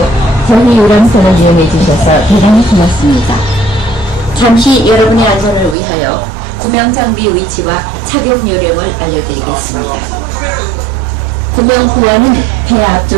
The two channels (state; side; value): drops out; left; at 5.8 s